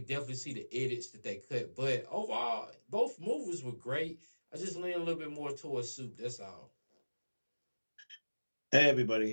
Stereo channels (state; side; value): inverted; both; correlation -1.00